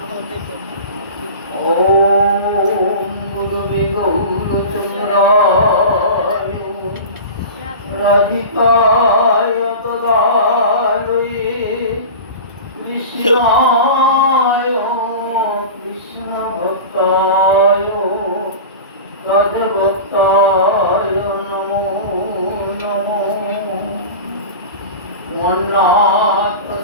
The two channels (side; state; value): both; inverted; correlation -0.32